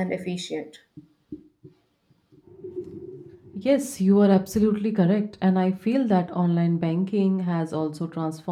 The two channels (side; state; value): both; identical; correlation 1.00